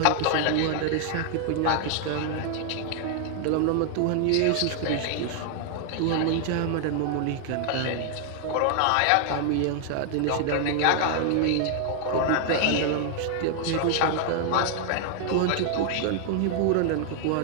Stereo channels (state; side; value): different; both; correlation 0.00